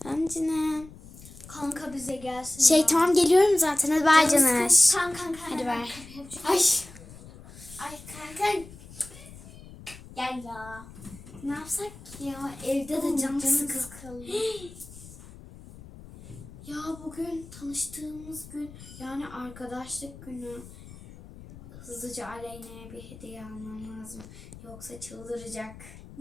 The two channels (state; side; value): noise; left; rumble, 17 dB below the sound